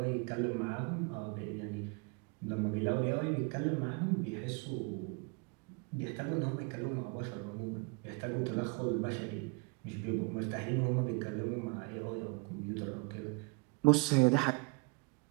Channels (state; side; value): quieter; left; 29.7 dB